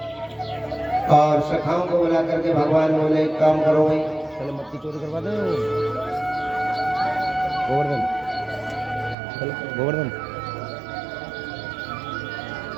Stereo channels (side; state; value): left; drops out; at 9.2 s